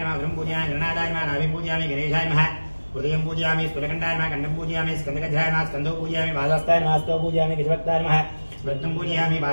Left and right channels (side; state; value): both; inverted; correlation -1.00